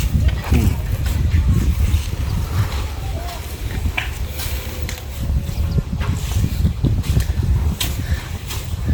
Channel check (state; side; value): identical; both; correlation 1.00